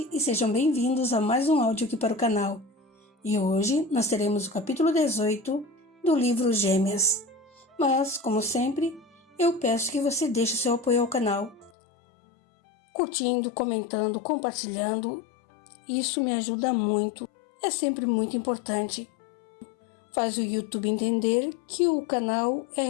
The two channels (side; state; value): right; drops out; at 11.7 s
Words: e sejam bem-vindos a mais um áudio aqui para o canal. E hoje nós teremos o capítulo 18 do livro Gêmeas. Mas, como sempre, eu peço que você deixe seu apoio ao canal, curtindo, comentando, compartilhando. Isso me ajuda muito, é sempre muito importante. Faz o YouTube entender que o canal é